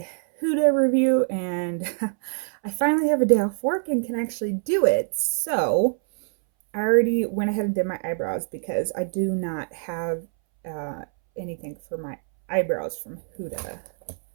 Huda review, and I finally have a day off work and can actually do it. So I already went ahead and did my eyebrows because I do not have anything for my eyebrows from Huda.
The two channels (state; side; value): silent; left; 62 dB below the other